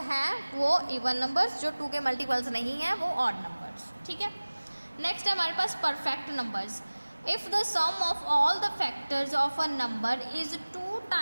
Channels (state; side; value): inverted; both; correlation -1.00